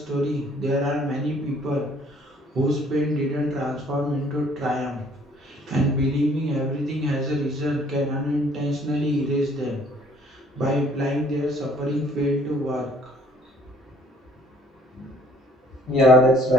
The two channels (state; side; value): normal; both; correlation 0.59